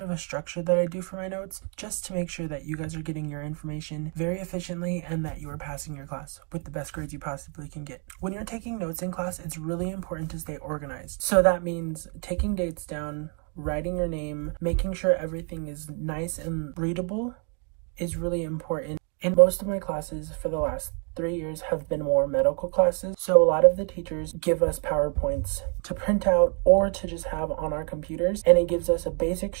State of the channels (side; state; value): left; quieter; 38.6 dB